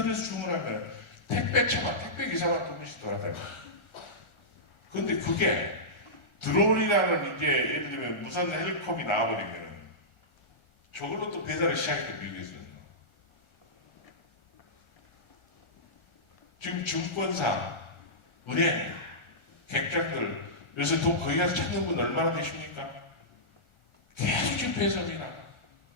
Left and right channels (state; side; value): late; right; 1.4 ms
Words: 주문하면 택배차만, 택배 기사만 두 분씩 돌아다니고. 근데 그게 드론이라는 이제 예를 들면 무선 헬리콥이 나와버리면 저걸로 또 배달을 시작했던 미국에서는. 지금 증권사, 은행, 객장들, 요새 돈 거기 가서 찾는 분 얼마나 되십니까? 계속 지금 배송이나.